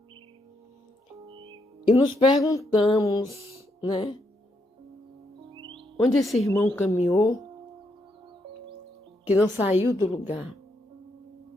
e nos perguntamos, né? Onde esse irmão caminhou que não saiu do lugar?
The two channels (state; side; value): normal; both; correlation 0.78